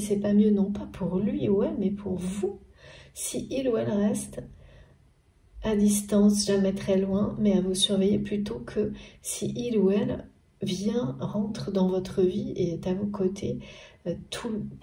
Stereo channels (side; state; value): both; identical; correlation 1.00